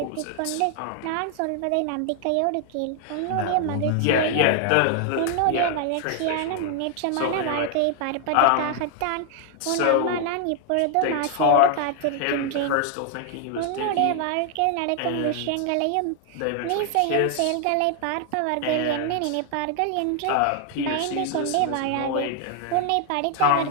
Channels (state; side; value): different; both; correlation 0.00